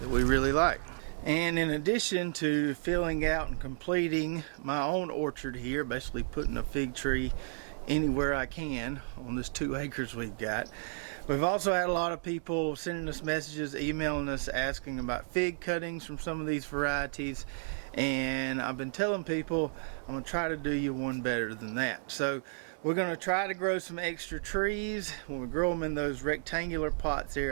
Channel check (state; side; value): silent; left; digital silence